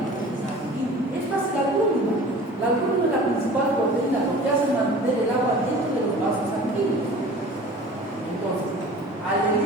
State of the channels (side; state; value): both; normal; correlation 0.42